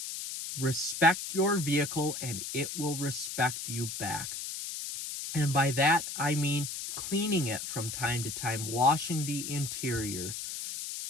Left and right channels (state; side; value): noise; left; hiss, 6 dB below the sound